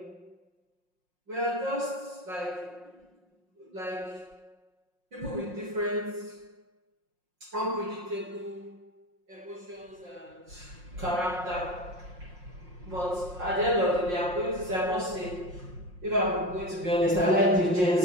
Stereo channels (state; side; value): late; left; 5.6 ms